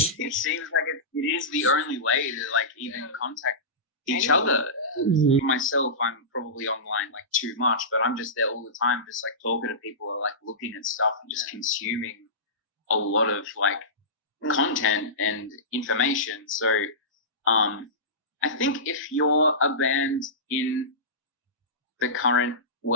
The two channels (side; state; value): both; normal; correlation -0.20